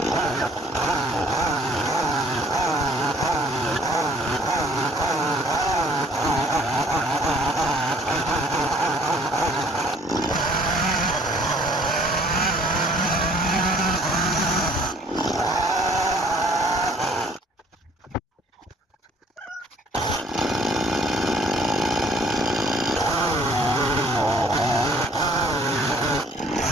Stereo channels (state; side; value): normal; both; correlation 0.58